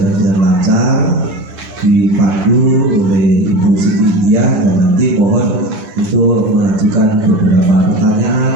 dengan lancar, dipandu oleh Ibu Siti India, dan nanti mohon untuk mengajukan beberapa pertanyaan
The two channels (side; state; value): left; late; 11 ms